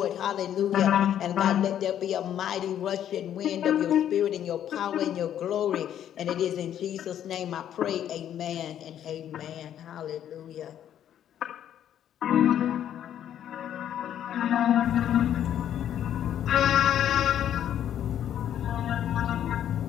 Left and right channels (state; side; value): quieter; right; 10.4 dB